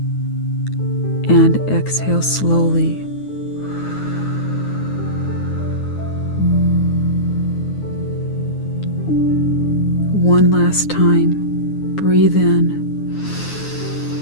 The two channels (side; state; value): right; late; 9.6 ms